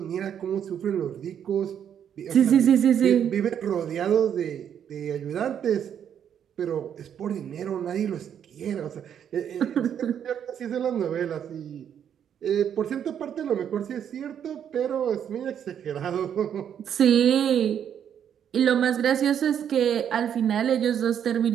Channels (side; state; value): left; quieter; 8.9 dB